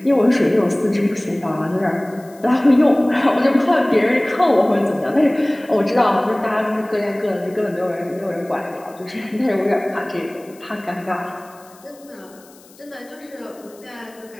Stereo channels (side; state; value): left; noise; hiss, 26 dB below the sound